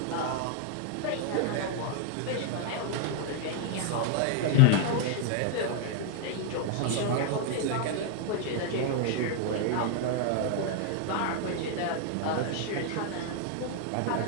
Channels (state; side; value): different; both; correlation 0.00